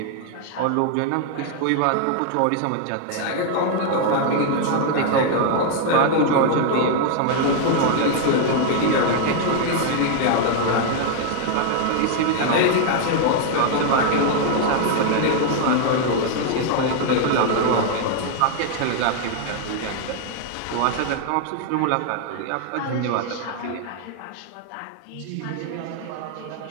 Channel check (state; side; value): different; both; correlation 0.00